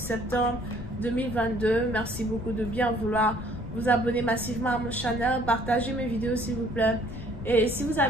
2022. Merci beaucoup de bien vouloir vous abonner massivement à mon channel, partagez mes vidéos s'il vous plaît. Et si vous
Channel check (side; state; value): left; noise; rumble, 11 dB below the sound